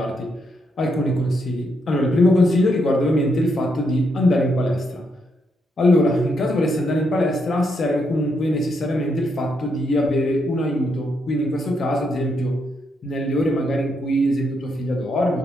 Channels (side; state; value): both; normal; correlation 0.78